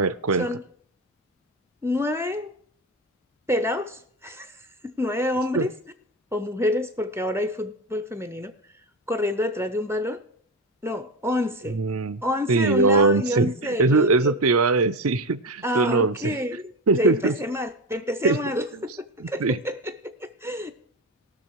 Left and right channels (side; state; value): both; normal; correlation 0.17